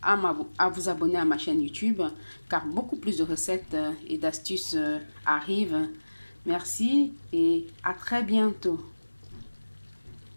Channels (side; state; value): both; inverted; correlation -1.00